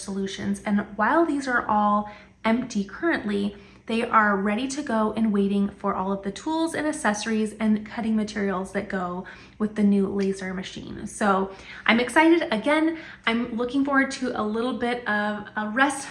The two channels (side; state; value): both; identical; correlation 1.00